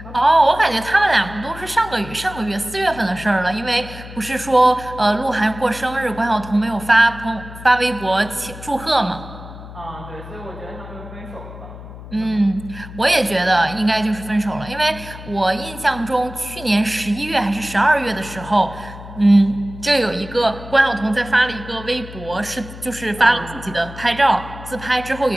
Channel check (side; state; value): left; noise; hum, 14 dB below the sound